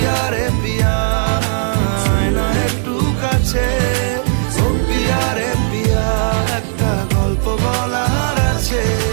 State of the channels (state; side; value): silent; left; digital silence